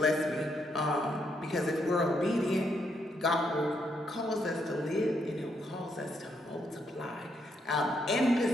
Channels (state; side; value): normal; both; correlation 0.76